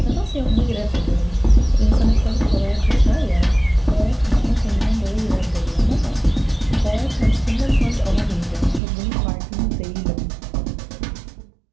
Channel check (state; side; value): drops out; left; at 8.8 s